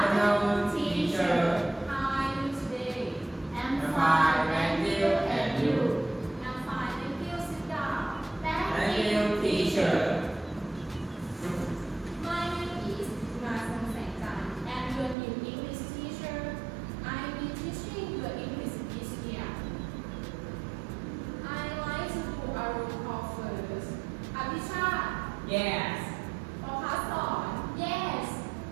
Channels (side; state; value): left; drops out; at 15.2 s